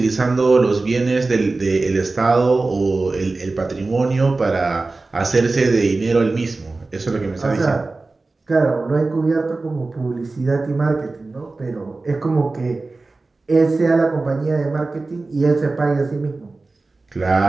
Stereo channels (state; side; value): quieter; left; 3.5 dB